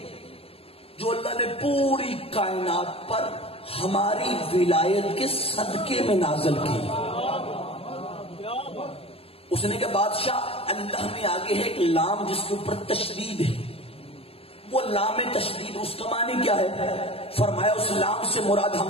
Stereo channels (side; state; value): right; late; 0.28 ms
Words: جو اللہ نے پوری کائنات پر ہماری ولایت کے صدقے میں نازل کی۔ اس نے کہا بادشاہ اللہ میں آگے ہے ایک لام جس کے اوپر تشدید ہے، وہ لام تشدید اس کا معنی کیا ہے؟ فرمایا اس لام سے مراد